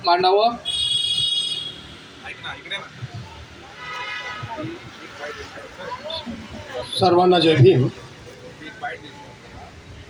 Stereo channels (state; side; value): identical; both; correlation 1.00